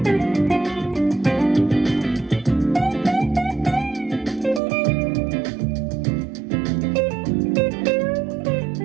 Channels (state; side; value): drops out; left; at 4.6 s